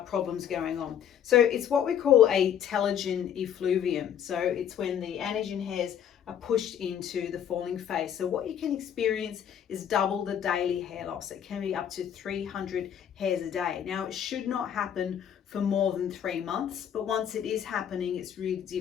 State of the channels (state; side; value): quieter; right; 9.2 dB